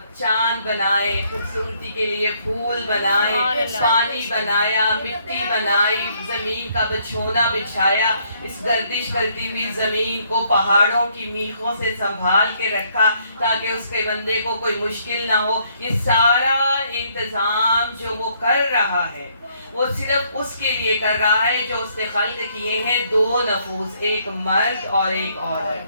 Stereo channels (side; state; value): both; inverted; correlation -0.69